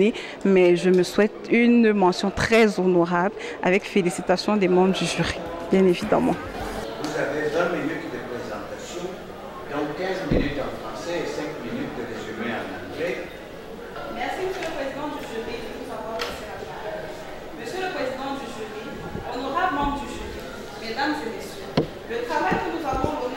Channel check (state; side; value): identical; both; correlation 1.00